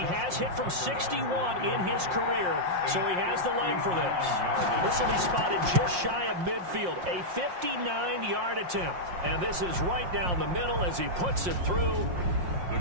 hit from 61 in his career, so he has the leg for this. This will be spotted just shy of midfield, a 59-yard attempt. And this is right down the middle as he puts it through. The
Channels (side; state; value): left; late; 5.6 ms